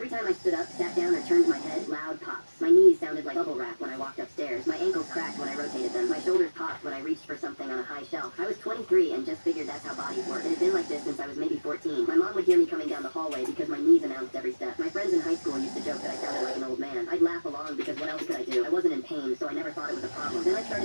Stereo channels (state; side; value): inverted; both; correlation -1.00